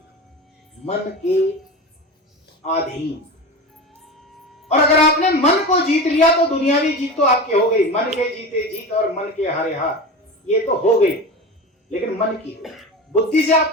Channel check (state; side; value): normal; both; correlation 0.28